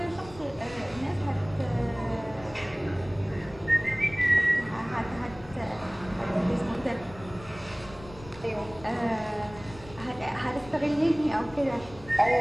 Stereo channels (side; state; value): left; noise; rumble, 18 dB below the sound